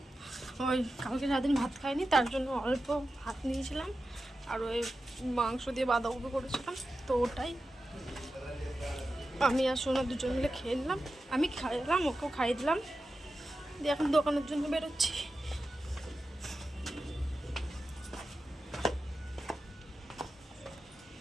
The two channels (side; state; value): both; normal; correlation 0.92